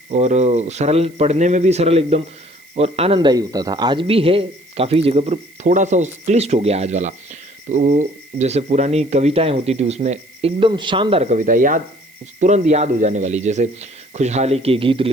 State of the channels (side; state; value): right; noise; hiss, 29 dB below the sound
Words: और सरल, पढ़ने में भी सरल एकदम, और आनंददायी होता था। आज भी है काफ़ी जगह पर, थोड़ा सा क्लिष्ट हो गया आज वाला। तो जैसे पुरानी कविताएं होती थी, उसमें एकदम शानदार कविता याद, तुरंत याद हो जाने वाली, जैसे खुशहाली के गीत